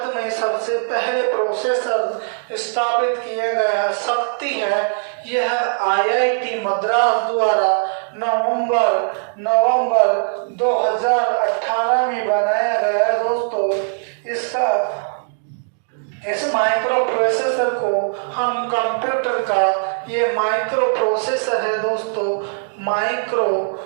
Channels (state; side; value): silent; left; digital silence